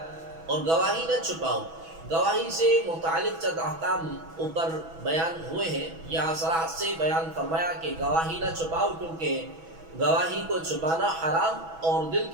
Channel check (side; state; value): left; late; 6.1 ms